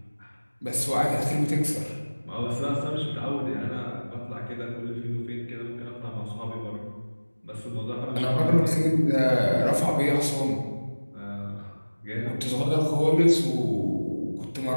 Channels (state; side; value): inverted; both; correlation -1.00